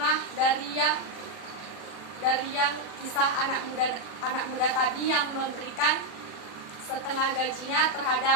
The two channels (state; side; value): late; right; 40 ms